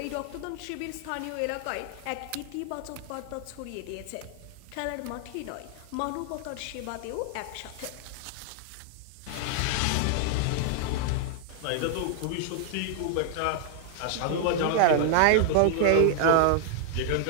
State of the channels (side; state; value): both; different; correlation -0.01